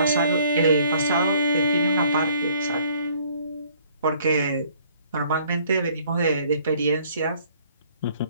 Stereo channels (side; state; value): both; inverted; correlation -0.60